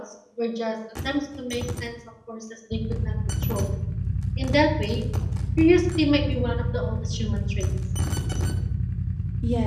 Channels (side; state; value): both; identical; correlation 1.00